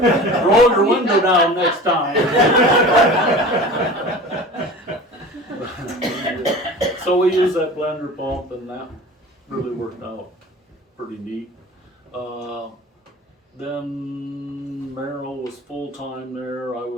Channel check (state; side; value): normal; both; correlation 0.37